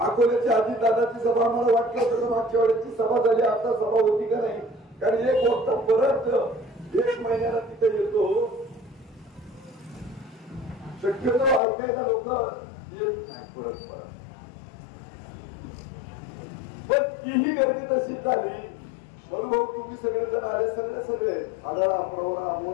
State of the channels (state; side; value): drops out; right; at 11.6 s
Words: अजितदादाची सभा आम्हाला वाटलं होतं मागच्या वेळेची सभा झाली, आता सभा होती का नाही. कारण एक वक्ता परत 1 महिन्याला तिथे येतो. शक्यतो ऐकायला लोक येत नाही परत. पण तीही गर्दी तशीच झाली. म्हणून तुम्ही सगळेजण आले, सगळे आढळा, प्रवरा,